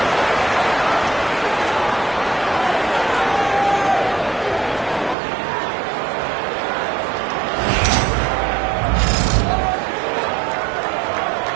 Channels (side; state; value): left; drops out; at 5.2 s